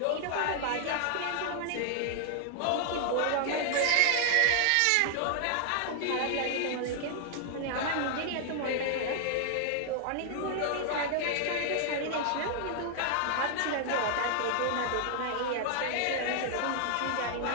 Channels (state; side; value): different; both; correlation -0.01